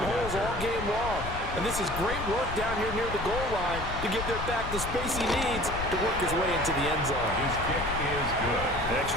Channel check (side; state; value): left; noise; rumble, 7 dB below the sound